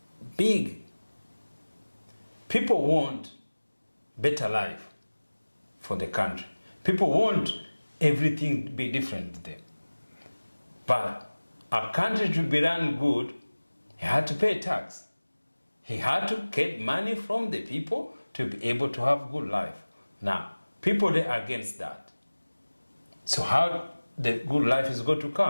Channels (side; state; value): both; inverted; correlation -1.00